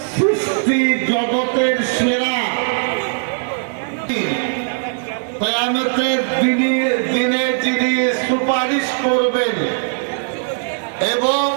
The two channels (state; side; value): silent; left; digital silence